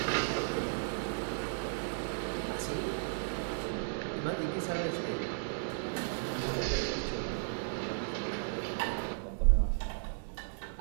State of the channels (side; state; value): left; silent; 54 dB below the other